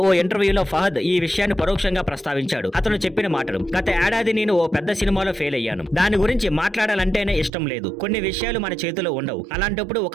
ఓ ఇంటర్వ్యూలో ఫహద్ ఈ విషయాన్ని పరోక్షంగా ప్రస్తావించాడు. అతను చెప్పిన మాటలు: గత ఏడాది నేను ఓ పెద్ద సినిమాలో ఫెయిల్ అయ్యాను. దాని గురించి మాట్లాడాలంటేనే ఇష్టం లేదు. కొన్ని విషయాలు మన చేతిలో ఉండవు. అలాంటప్పుడు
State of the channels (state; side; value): drops out; left; at 7.5 s